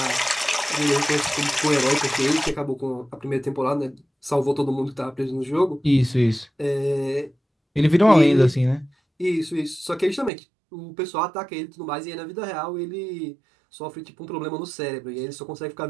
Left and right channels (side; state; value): left; drops out; at 10.3 s